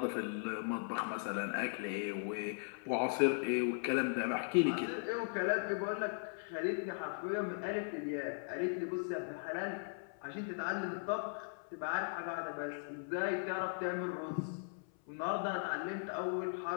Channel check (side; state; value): right; silent; 52 dB below the other